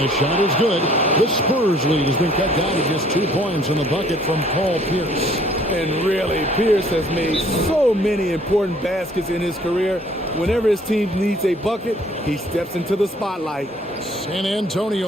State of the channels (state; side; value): normal; both; correlation 0.58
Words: shot is good. The Spurs lead has been cut down to just 2 points in the bucket from Paul Pierce. And really, Pierce has made so many important baskets in his career. Whenever his team needs a bucket, he steps into the spotlight. San